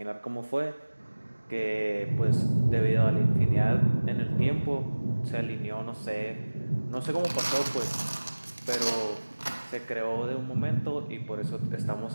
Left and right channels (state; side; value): inverted; both; correlation -1.00